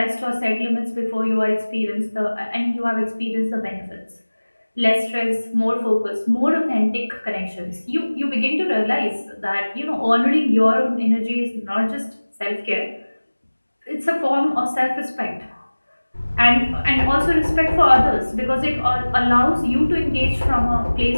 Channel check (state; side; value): inverted; both; correlation -1.00